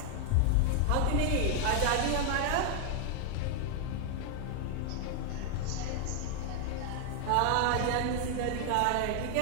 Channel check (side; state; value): both; different; correlation 0.00